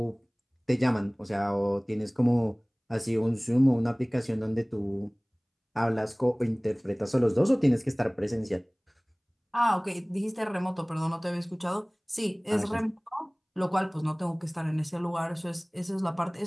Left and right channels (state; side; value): identical; both; correlation 1.00